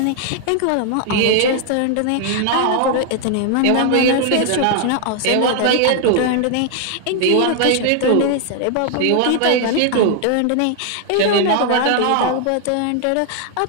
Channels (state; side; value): different; both; correlation 0.00